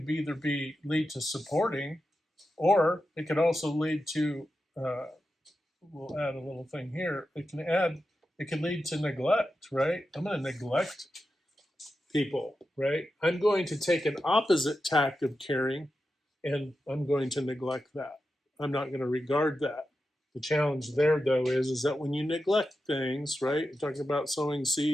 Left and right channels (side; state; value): both; normal; correlation 0.90